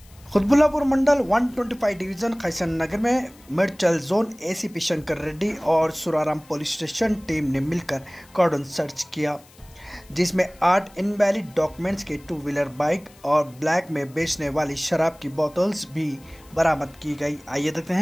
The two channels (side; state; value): left; noise; hiss, 26 dB below the sound